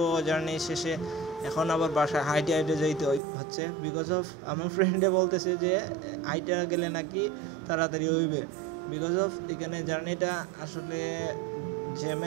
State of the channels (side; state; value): left; drops out; at 3.2 s